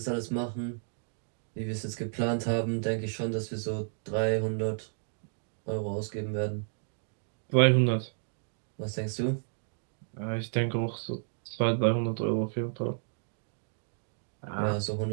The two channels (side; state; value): left; silent; digital silence